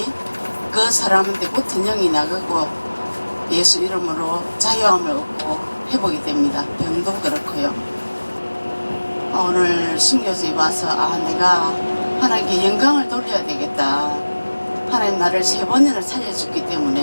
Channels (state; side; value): inverted; both; correlation -1.00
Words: 그 사람한테 붙은 영이 나가고 예수 이름으로 자유함을 얻고 회복이 됩니다. 병도 그렇고요. 오늘 순교지에 와서 내가 하나님께 영광을 돌려야 되겠다. 하나님 나를 3번이나 살려줬기